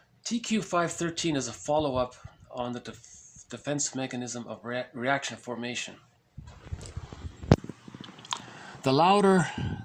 TQ 513 is a follow-up on the defense mechanism of reaction formation. The louder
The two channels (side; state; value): both; identical; correlation 1.00